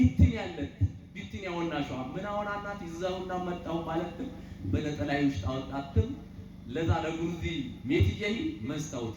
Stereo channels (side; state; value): both; identical; correlation 1.00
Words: ያለት ቢትን ያወናሽው ምን አወናናት ይዘውና መጣው ማለት በለጠላይ ውስጥ አወጣትም ለዛ ለጉርዚ ሜትዬ